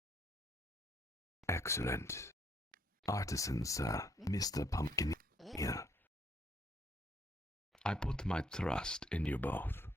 Excellent. Artisan, sir, Mr. Pumpkineer. I put my trust in you both.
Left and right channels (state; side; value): normal; both; correlation 0.68